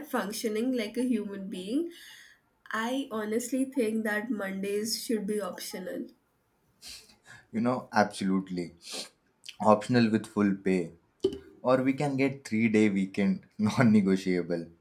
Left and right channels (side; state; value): both; identical; correlation 1.00